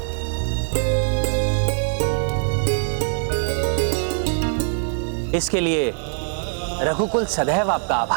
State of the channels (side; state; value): left; silent; digital silence